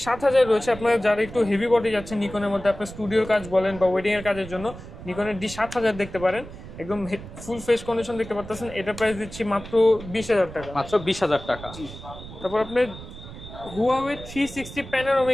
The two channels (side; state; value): right; noise; rumble, 14 dB below the sound